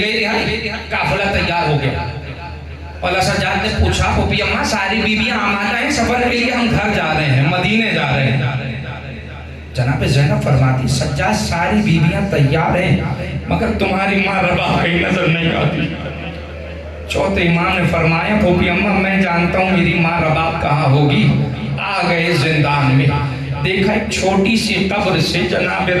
रिहाई, काफिला तैयार हो गया। और सज्जाद ने पूछा फूफी अम्मा सारी बीबियां आमादा हैं सफर के लिए, हम घर जा रहे हैं, मदीने जा रहे हैं। जनाब ज़ैनब फरमाती सज्जाद सारी बीबियां तैयार हैं मगर तुम्हारी माँ रबाब कहीं नजर नहीं आती। चौथे इमाम ने फरमाया फूफी अम्मा मैं जानता हूँ मेरी माँ रबाब कहाँ होगी। आ गए जिंदान में, देखा एक छोटी सी कब्र से जनाब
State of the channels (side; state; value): both; identical; correlation 1.00